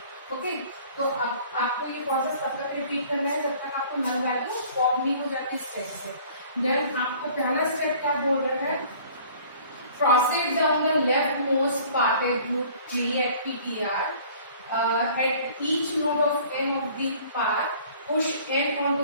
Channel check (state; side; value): inverted; both; correlation -0.51